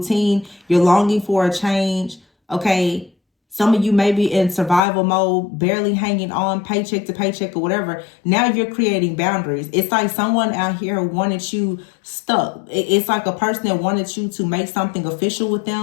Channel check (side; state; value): right; drops out; at 4.8 s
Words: You're longing for a change. Okay. Some of you may be in survival mode, barely hanging on paycheck to paycheck or whatever. Now you're creating boundaries. It's like someone out here wanted you stuck. It's like a person that wanted you to make something official with